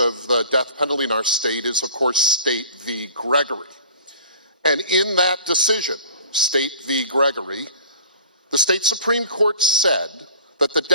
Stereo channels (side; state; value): both; inverted; correlation -0.47